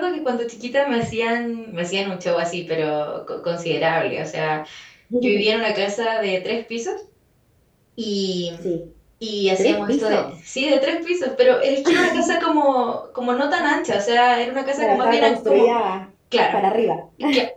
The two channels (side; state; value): both; identical; correlation 1.00